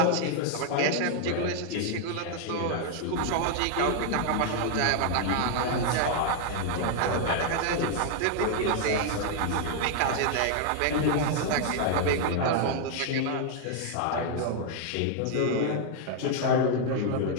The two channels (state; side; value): different; both; correlation 0.00